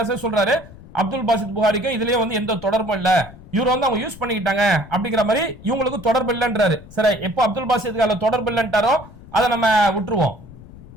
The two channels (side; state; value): left; noise; rumble, 19 dB below the sound